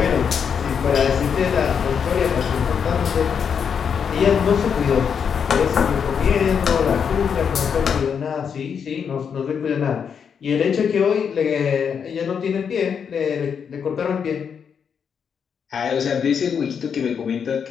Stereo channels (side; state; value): right; quieter; 7.0 dB